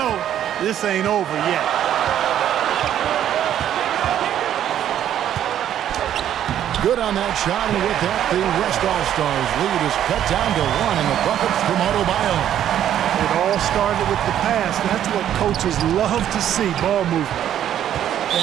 this ain't over yet. Good on that shot, and with that, the West All-Stars lead is cut down to 1 in the bucket from Adebayo. It all started with the pass. That's what coaches love to see, ball movement.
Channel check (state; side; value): quieter; left; 10.7 dB